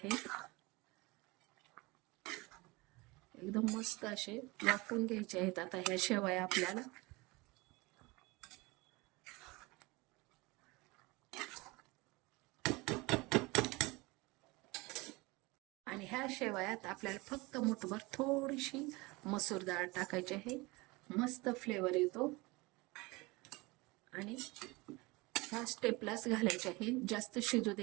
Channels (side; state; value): left; quieter; 23.9 dB